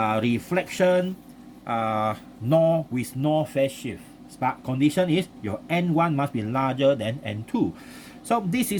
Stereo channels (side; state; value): both; identical; correlation 1.00